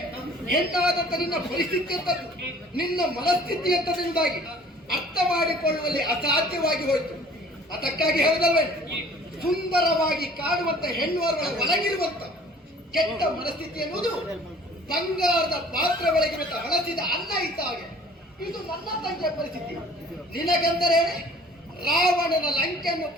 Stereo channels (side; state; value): both; normal; correlation 0.51